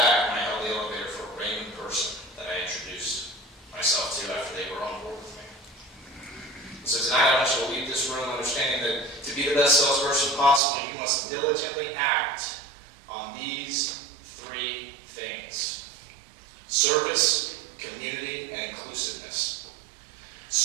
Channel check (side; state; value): left; drops out; at 10.6 s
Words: when I held the elevator for a random person that I introduced myself to after they were on board with me. So tonight I want you to leave this room understanding that to be the best salesperson possible, you must diligently act on these three things: service, community, and inclusiveness.